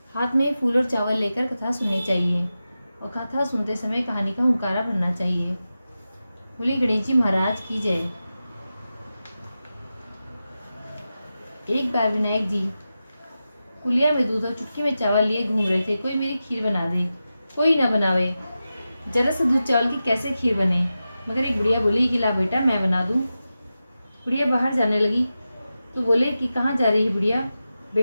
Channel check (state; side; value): inverted; both; correlation -0.92